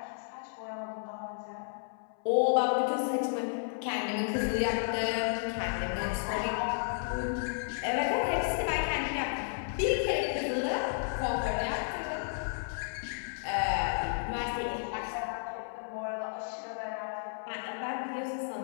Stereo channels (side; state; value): right; silent; 56 dB below the other